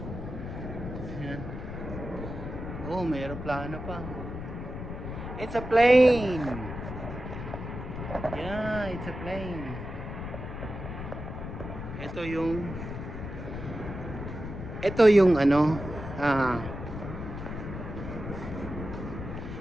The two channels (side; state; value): left; noise; rumble, 8 dB below the sound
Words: Ayan. Oh, may aeroplano pa. It's a plane. Yeah, it's a plane. Ito yung ano,